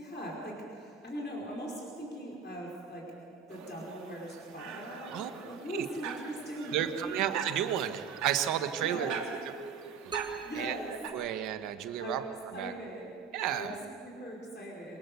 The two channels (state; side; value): quieter; left; 6.4 dB